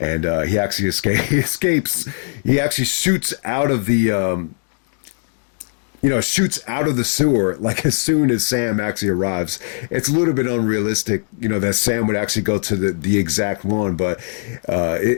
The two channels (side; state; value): right; silent; digital silence